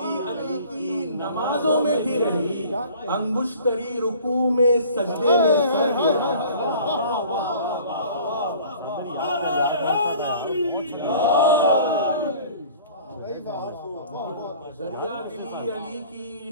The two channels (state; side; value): inverted; both; correlation -0.48